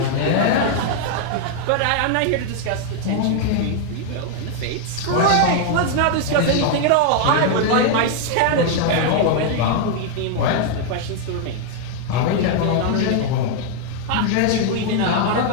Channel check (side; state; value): both; different; correlation 0.00